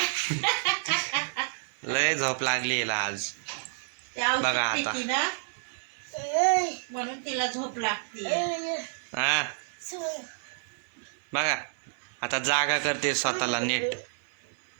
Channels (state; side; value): silent; left; digital silence